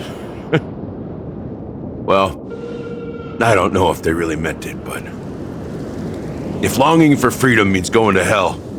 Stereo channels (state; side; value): identical; both; correlation 1.00